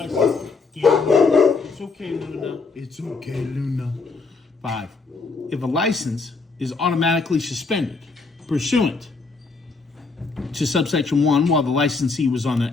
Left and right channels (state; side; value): quieter; right; 4.2 dB